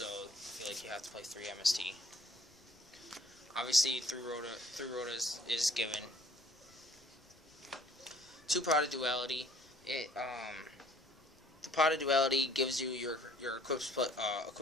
I feel like you have to play 3 MST. Obviously, 3 Rhoda is given. 2 Pot of Duality. The Pot of Duality gives you your equip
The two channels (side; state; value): left; noise; rumble, 29 dB below the sound